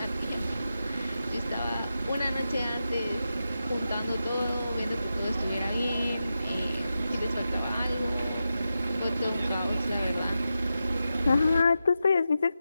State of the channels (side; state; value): both; inverted; correlation -0.90